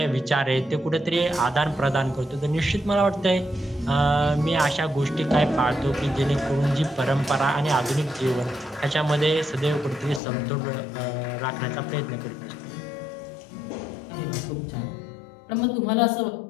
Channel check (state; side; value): drops out; right; at 10.2 s